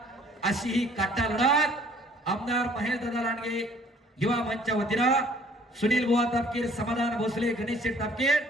अशी ही काटा लढत आमदार महेश दादा लांडगे युवा मंचच्या वतीनं सुनील बुवा तापकीर, समाधान भोसले, गणेश शेठ तापकीर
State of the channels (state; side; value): normal; both; correlation 0.57